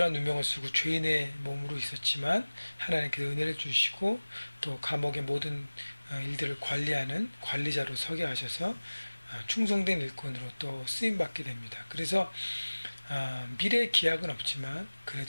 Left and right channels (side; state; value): both; inverted; correlation -1.00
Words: 누명을 쓰고 죄인의 몸으로 있었지만 하나님께서 은혜를 주시고 또 감옥의 모든 일들을 관리하는 관리자로 서게 하셔서 충성된 일꾼으로 또 쓰임받게 됩니다. 그래서 미래의 기약은 없지만